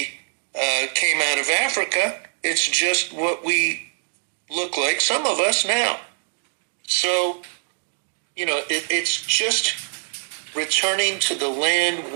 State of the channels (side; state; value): left; silent; 63 dB below the other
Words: came out of Africa. It's just what we look like, some of us now. So, it's just returning to the land